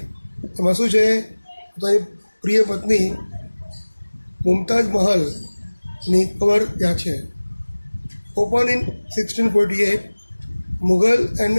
એમાં શું છે, પોતાની પ્રિય પત્ની મુમતાઝ મહલની કબર ત્યાં છે. Open in 1648, Mughal and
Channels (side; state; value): both; inverted; correlation -1.00